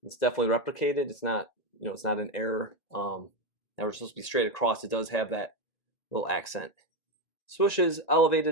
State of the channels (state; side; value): late; right; 1.9 ms